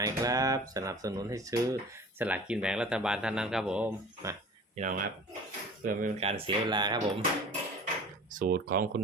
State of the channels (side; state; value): both; normal; correlation 0.42